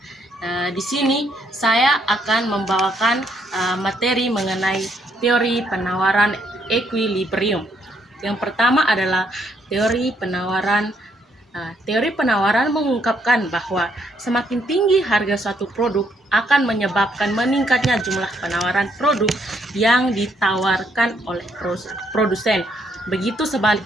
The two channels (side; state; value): both; normal; correlation 0.72